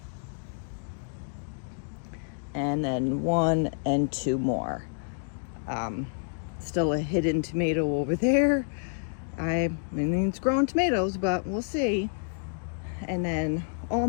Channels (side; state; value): right; silent; digital silence